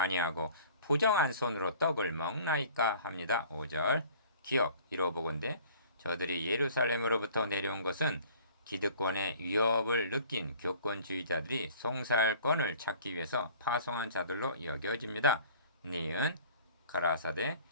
부정한 손으로 떡을 먹나이까 합니다. 5절 기억 이로보건대 저들이 예루살렘으로부터 내려온 것은 기득권의 위협을 느낀 교권주의자들이 송살권을 찾기 위해서 파송한 자들로 여겨집니다. 니은 가라사대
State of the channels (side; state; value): both; inverted; correlation -0.49